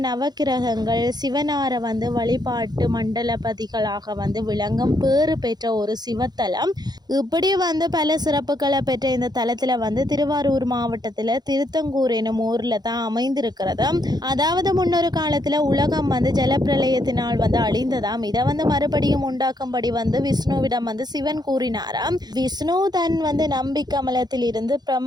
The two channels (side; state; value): left; late; 0.20 ms